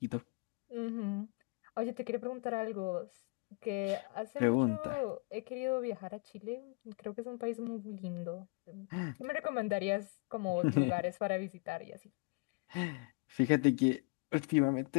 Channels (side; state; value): right; quieter; 30.3 dB